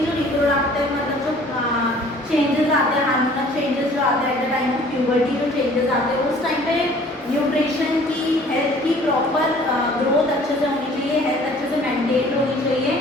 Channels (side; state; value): both; normal; correlation 0.52